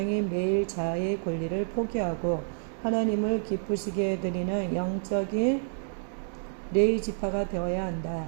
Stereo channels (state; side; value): silent; left; digital silence